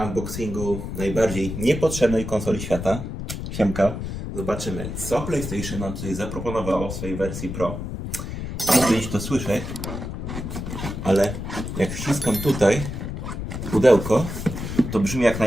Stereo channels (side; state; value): left; noise; rumble, 6 dB below the sound